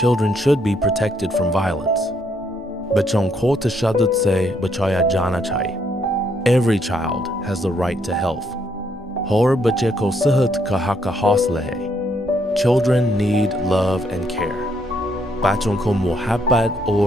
Children should be protected from violence. Bachon ko tashaddud se bachaya jana chahiye. Every child has the right to health. Hor bache ko sehat ka haqqa hausla hai. Children need love and care. Bachon ko muhabbat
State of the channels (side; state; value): both; normal; correlation 0.72